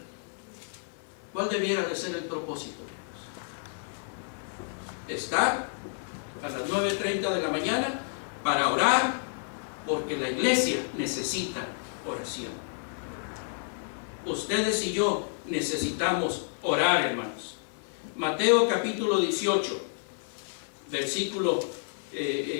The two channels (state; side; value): silent; right; digital silence